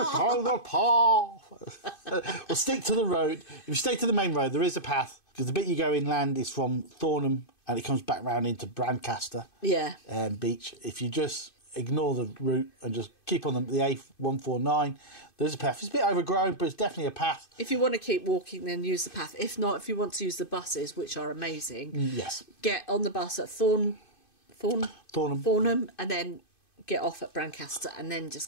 Well, stick to the road. If you stay to the main road, there is a path, because the bit you go inland is from Thornham and it comes back round into Brancaster beach. If you just ignore the route and just keep on the A149, there's a path. It's a bit overgrown, but it's definitely a path. If you want to keep walking, then use the path. If not, if you want to use the buses, which are amazing, get on the bus at Thornham, and then get off at Brancaster, and then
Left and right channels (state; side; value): late; right; 2.5 ms